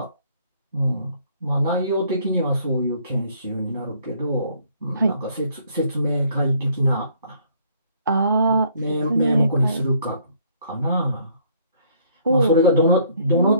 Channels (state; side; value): inverted; both; correlation -0.63